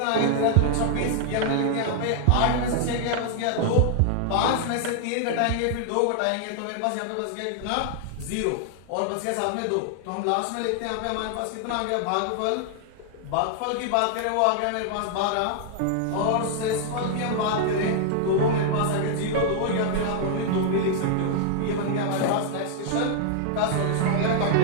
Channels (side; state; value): both; different; correlation 0.00